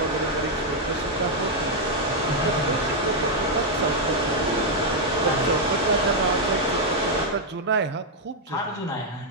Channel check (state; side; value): normal; both; correlation -0.01